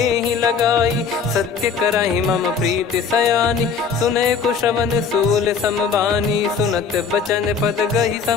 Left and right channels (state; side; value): quieter; right; 5.9 dB